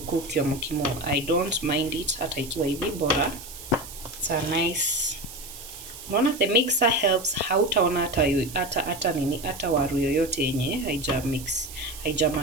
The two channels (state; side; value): noise; right; hiss, 14 dB below the sound